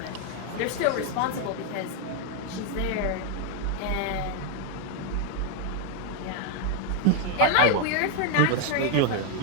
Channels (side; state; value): both; different; correlation 0.01